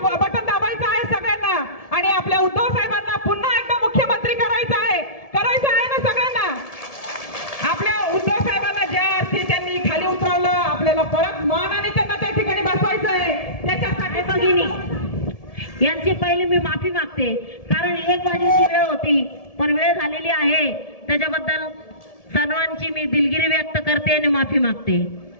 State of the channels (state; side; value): late; right; 1.7 ms